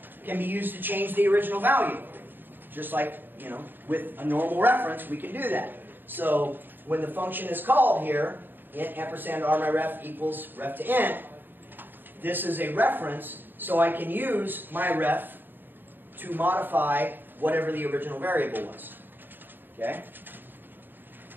can be used to change the original value. Just like, with a normal reference, we can do that. So when the function is called here, int ampersand rmyref equals ref to int, this is a reference, so I can use my ref to modify whatever the original variable was. Okay?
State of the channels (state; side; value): late; left; 0.093 ms